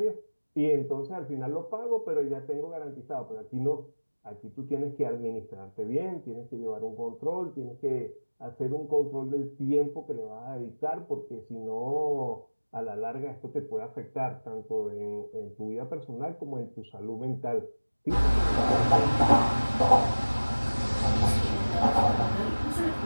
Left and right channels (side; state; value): both; inverted; correlation -1.00